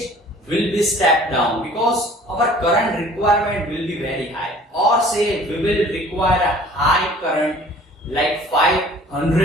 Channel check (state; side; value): normal; both; correlation 0.50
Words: will be stepped down because our current requirement will be very high, or say we will require a high current like